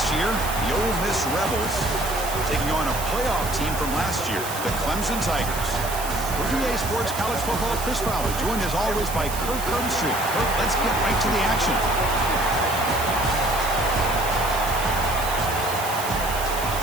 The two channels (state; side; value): noise; right; hiss, 8 dB below the sound